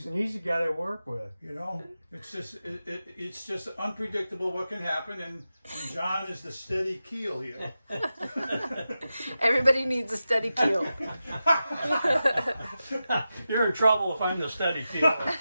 an easy guy to work with. You know, it's just unpredictable what can happen, and John is the steady keel here. Everybody needs a steady keel. You're in trouble if I'm the steady keel.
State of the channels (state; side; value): inverted; both; correlation -0.92